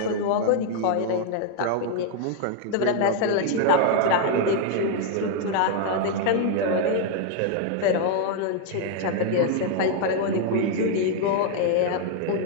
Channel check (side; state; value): both; different; correlation 0.00